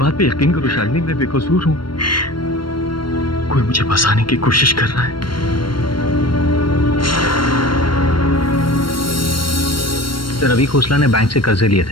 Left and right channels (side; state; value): right; late; 0.72 ms